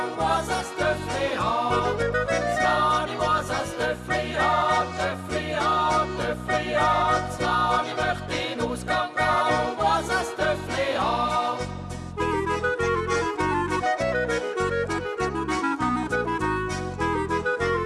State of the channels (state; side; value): identical; both; correlation 1.00